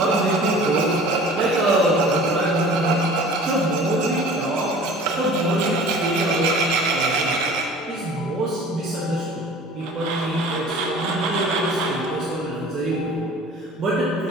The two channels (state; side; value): normal; both; correlation 0.44